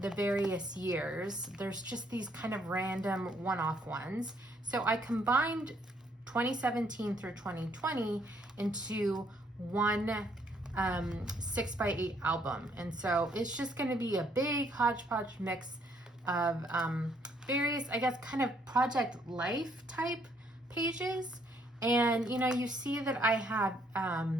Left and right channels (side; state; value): both; normal; correlation 0.68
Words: various years. There's just these kind of random one-off ones. So I combined 2017 through 2020 into one 6 by 8 album. And so it's just going to be a big hodgepodge mix of various, I guess, kind of Project Life type pages. And, you know, you see that I have